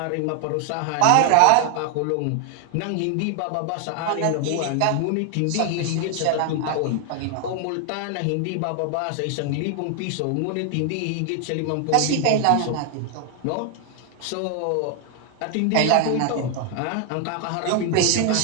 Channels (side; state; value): both; different; correlation 0.00